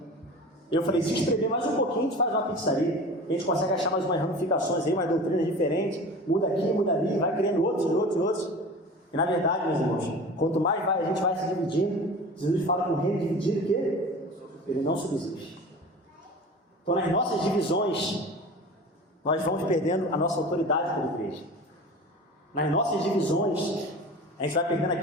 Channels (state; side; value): normal; both; correlation 0.36